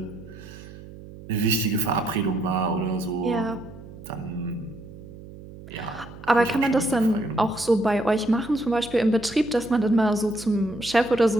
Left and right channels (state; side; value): noise; right; hum, 16 dB below the sound